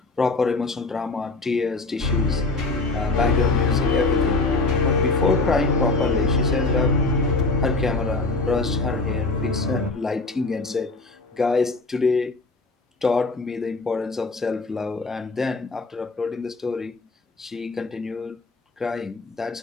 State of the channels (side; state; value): right; quieter; 3.5 dB